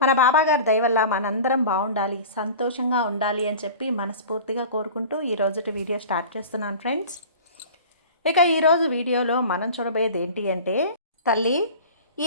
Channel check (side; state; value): both; inverted; correlation -0.38